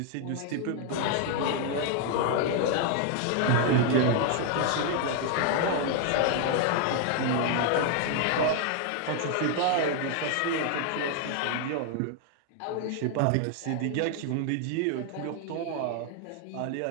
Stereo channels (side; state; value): both; different; correlation 0.00